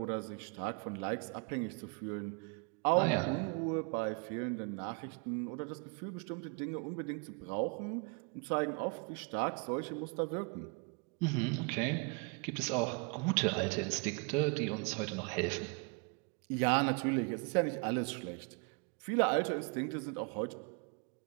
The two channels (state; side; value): quieter; left; 33.1 dB